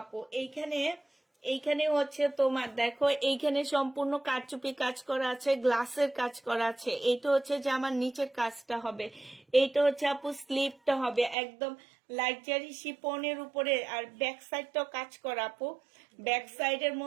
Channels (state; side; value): drops out; left; at 11.4 s